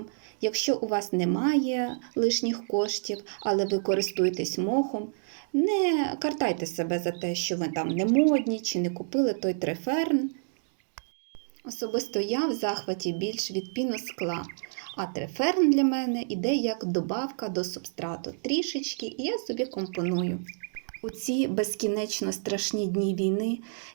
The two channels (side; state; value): left; silent; digital silence